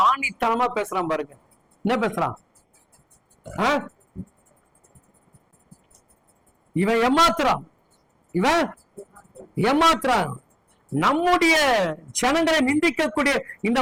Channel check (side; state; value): both; identical; correlation 1.00